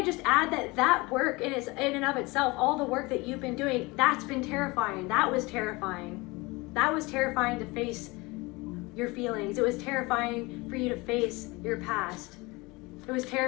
just add that work in and of itself, all the work that you've been doing, that's been terrifying. That was terrifying. That was terrifying to face your feelings. It was terrifying for you to face your past. It was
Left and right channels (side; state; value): right; quieter; 24.0 dB